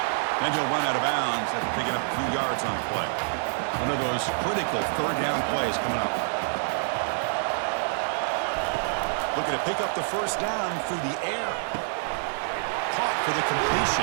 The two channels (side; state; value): left; silent; digital silence